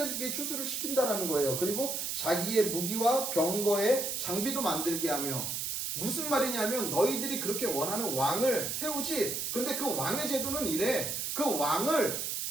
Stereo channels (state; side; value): noise; right; hiss, 2 dB below the sound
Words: 추수를 시킨다라는 거예요. 그리고 자기의 무기와 병거의 장비도 만들게 하며, 무슨 말이냐면 너희들이 그렇게 원하는 왕을 세우지. 그런데 그 왕의 제도는 이래. 그 왕을